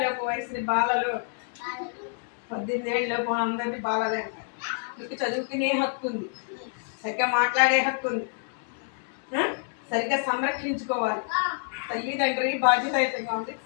లోపు వయసు బాలలు, 18 ఏళ్ళ లోపు అందరినీ బాలలే అంటారు. మీకు చదువుకునే హక్కు ఉంది, సరిగ్గా మాట్లాడే హక్కు ఉంది, సరిగ్గా సంరక్షించుకోవాలి. తల్లిదండ్రి బాధ్యతగా ఉంది,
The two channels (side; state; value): right; silent; 60 dB below the other